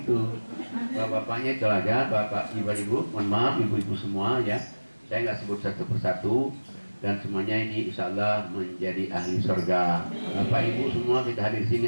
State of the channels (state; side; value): inverted; both; correlation -1.00